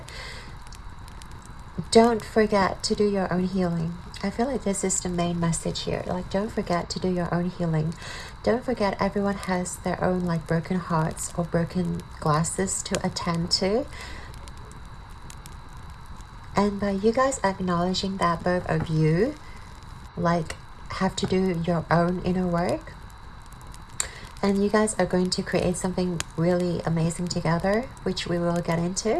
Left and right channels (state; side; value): identical; both; correlation 1.00